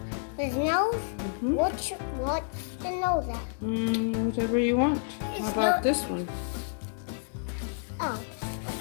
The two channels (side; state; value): right; silent; digital silence